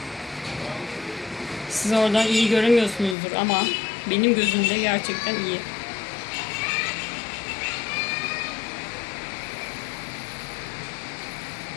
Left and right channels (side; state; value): right; drops out; at 3.2 s